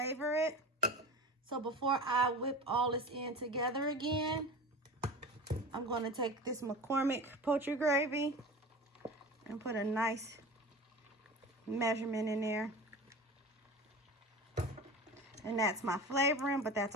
it. So before I whip all this in together again, I'm going to take this McCormick poultry gravy and put a nice measurement in there. And that's my flavoring, but that's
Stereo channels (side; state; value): both; normal; correlation 0.33